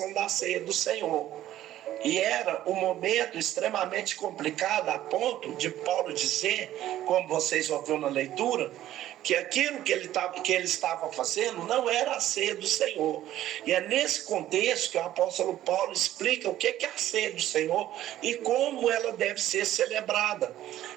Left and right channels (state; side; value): quieter; left; 13.3 dB